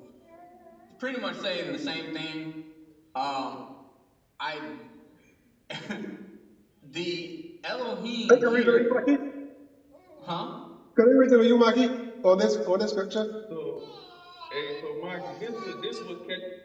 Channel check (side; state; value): both; identical; correlation 1.00